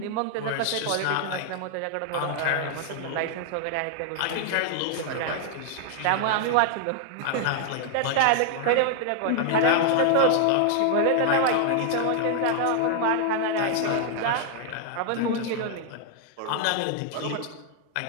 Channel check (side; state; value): both; different; correlation 0.00